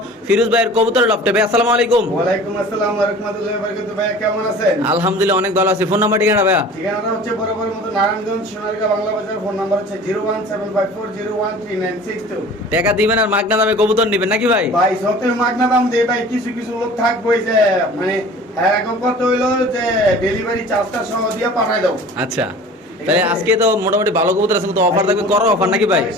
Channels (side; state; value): both; normal; correlation 0.43